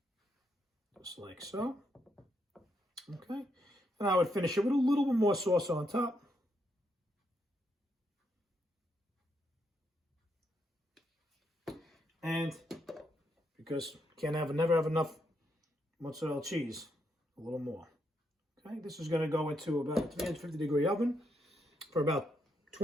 Just like so. Okay. And I would finish it with a little bit more sauce on top. And because you can't never have enough mozzarella cheese, a little more. Okay, this is going to go into about a 350-degree oven for about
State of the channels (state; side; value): normal; both; correlation 0.78